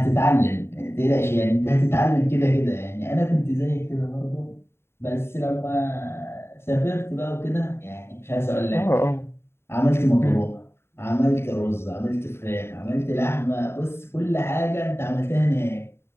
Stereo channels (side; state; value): right; late; 0.12 ms